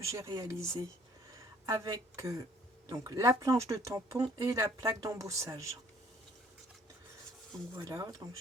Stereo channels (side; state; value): both; normal; correlation 0.59